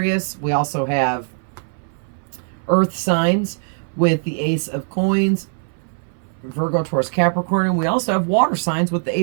We also have earth signs with the Ace of Coins, Virgo, Taurus, Capricorn. And we also have water signs with the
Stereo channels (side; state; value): left; silent; 62 dB below the other